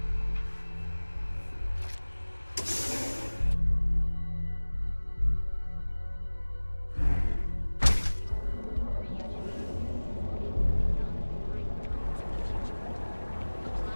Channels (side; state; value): both; inverted; correlation -1.00